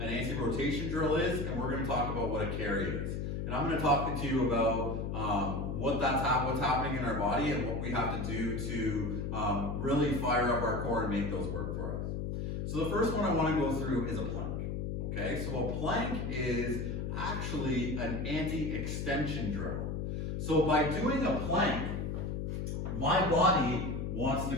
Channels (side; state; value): left; noise; hum, 2 dB below the sound